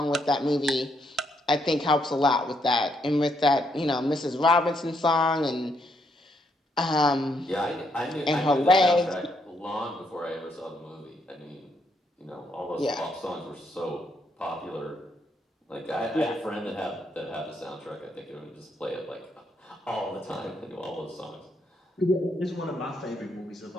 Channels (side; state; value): both; normal; correlation 0.75